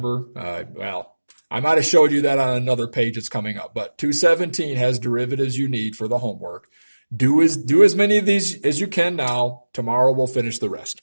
well, I might have showed you that on another page that's coming up, but 217 has derivatives you need for the homework. Do as many of these as you can now. Tomorrow we'll finish the rest.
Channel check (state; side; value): inverted; both; correlation -1.00